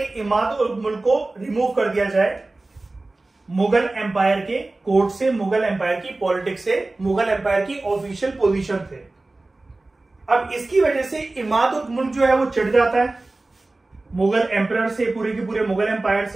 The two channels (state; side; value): quieter; left; 3.1 dB